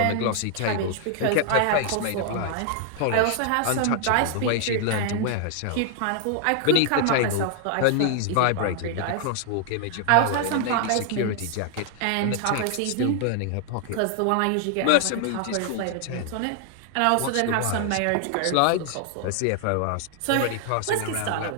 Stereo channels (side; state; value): both; different; correlation 0.00